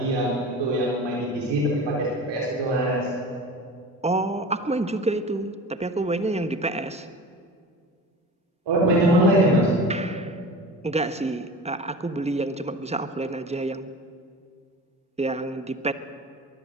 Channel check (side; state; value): both; normal; correlation 0.35